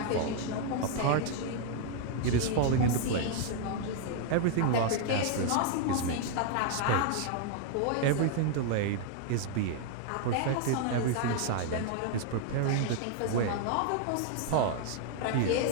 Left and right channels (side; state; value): both; different; correlation 0.00